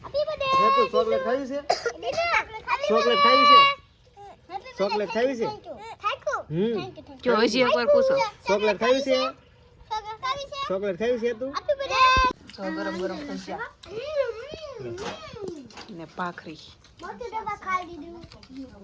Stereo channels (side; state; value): both; identical; correlation 1.00